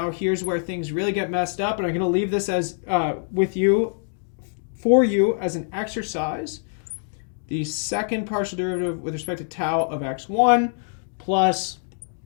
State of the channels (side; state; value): right; silent; digital silence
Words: here's where things really get messed up. And I'm going to leave this as for you as an exercise. The second partial derivative with respect to tau of x1 plus